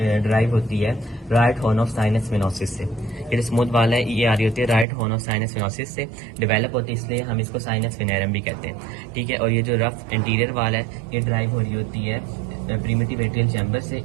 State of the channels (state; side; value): drops out; left; at 4.9 s